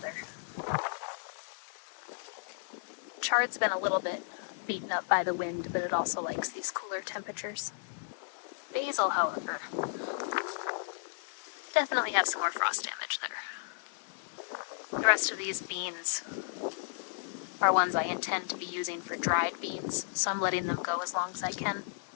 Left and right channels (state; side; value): silent; right; 55 dB below the other